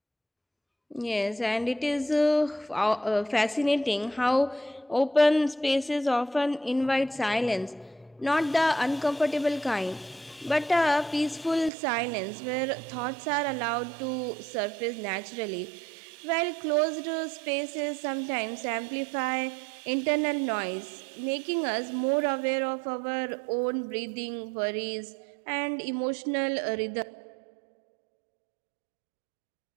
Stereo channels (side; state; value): left; drops out; at 11.7 s